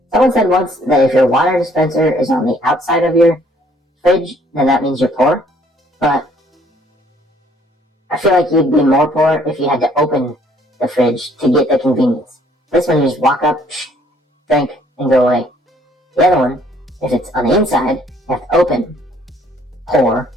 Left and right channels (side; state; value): both; normal; correlation 0.62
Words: Someone said once that if your water dispenser is on the outside of your fridge, then that means you're poor. But I feel like you'd be more poor if you had to open the fridge to get the convenience. This one you just walk up, drink, and go away. The other one, if it's on the inside, you have to open, pour,